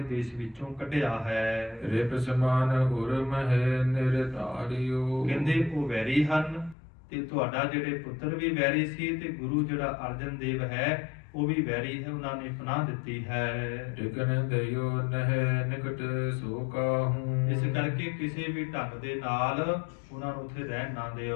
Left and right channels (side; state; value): right; drops out; at 6.8 s